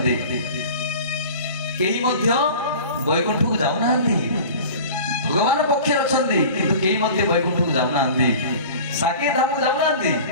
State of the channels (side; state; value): both; inverted; correlation -0.40